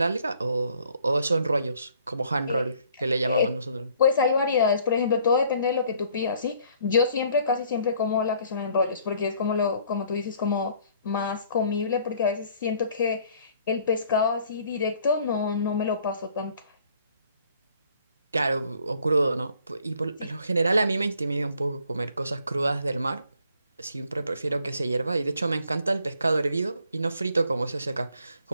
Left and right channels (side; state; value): both; inverted; correlation -0.60